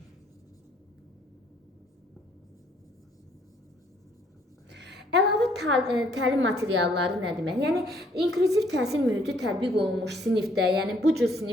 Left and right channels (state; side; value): normal; both; correlation 0.65